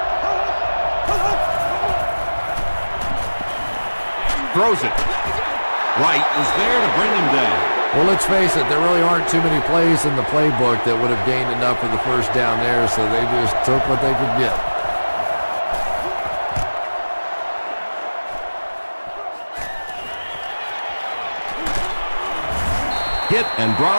Throws it. Wright was there to bring him down. Well, let's face it, there really aren't too many plays in the playbook that would have gained enough for the first down there, so they just took what they could get. Hit and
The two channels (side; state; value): both; inverted; correlation -1.00